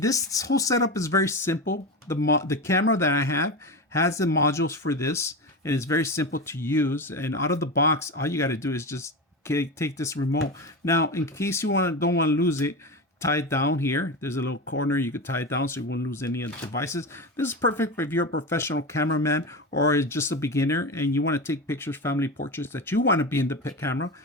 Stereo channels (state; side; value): normal; both; correlation 0.21